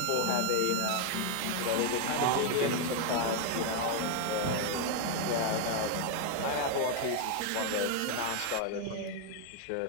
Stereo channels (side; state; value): both; different; correlation 0.01